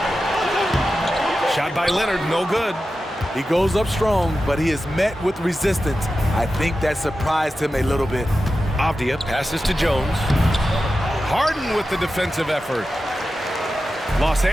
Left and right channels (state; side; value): normal; both; correlation 0.92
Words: Shot by Leonard, no good. He goes up strong, but he is met with resistance. I think that surprised him a little bit. Avdia passes to Jones. Harden with the defensive effort. Los